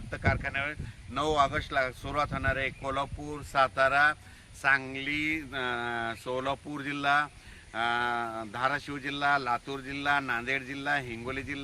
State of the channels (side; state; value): both; identical; correlation 1.00